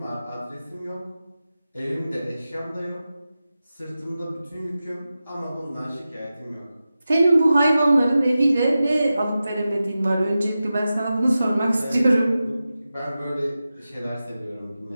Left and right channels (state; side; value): inverted; both; correlation -0.93